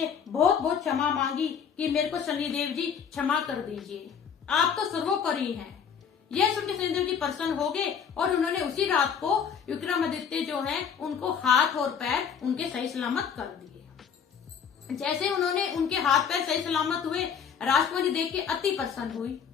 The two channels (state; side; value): quieter; right; 7.2 dB